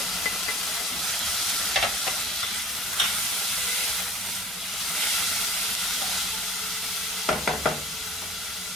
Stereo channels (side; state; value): both; normal; correlation 0.47